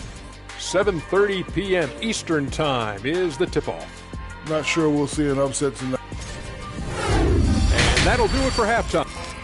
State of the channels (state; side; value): identical; both; correlation 1.00